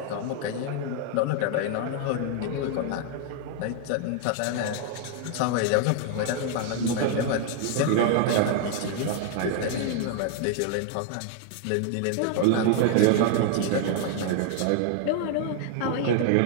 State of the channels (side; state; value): both; different; correlation 0.00